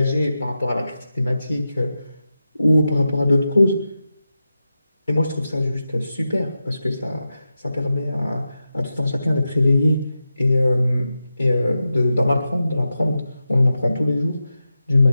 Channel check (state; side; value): inverted; both; correlation -0.91